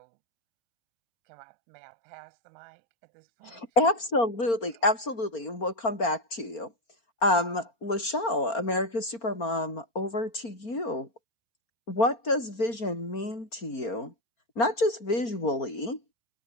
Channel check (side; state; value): right; late; 4.4 ms